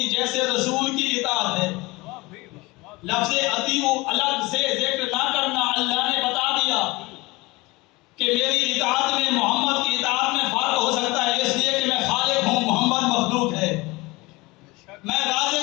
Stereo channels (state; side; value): quieter; right; 22.8 dB